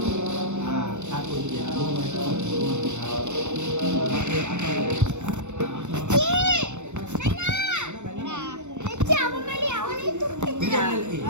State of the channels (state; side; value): late; left; 0.84 ms